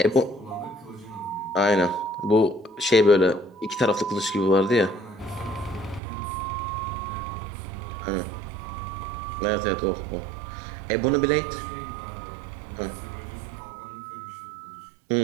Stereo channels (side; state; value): left; drops out; at 6.0 s